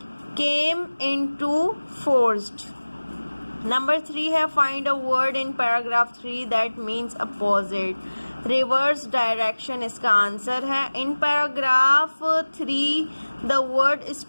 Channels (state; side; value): inverted; both; correlation -1.00